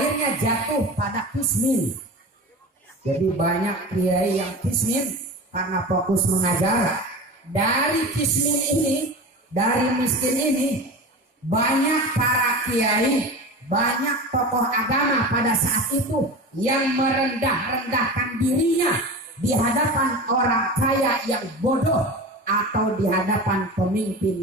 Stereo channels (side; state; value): both; normal; correlation 0.30